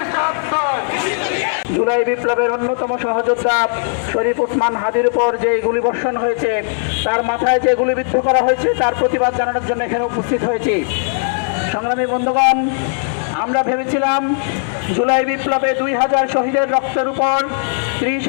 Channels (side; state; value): right; silent; 68 dB below the other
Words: জুলাই বিপ্লবের অন্যতম সহযোদ্ধা শরীফ ওসমান হাদির উপর যে গুলিবর্ষণ হয়েছে, তার মাথায় যে গুলিবিদ্ধ করা হয়েছে, তার প্রতিবাদ জানানোর জন্য এখানে উপস্থিত হয়েছি। সংগ্রামী বন্ধুগণ, আমরা ভেবেছিলাম জুলাই বিপ্লবে 2000 শহীদের রক্তের উপর,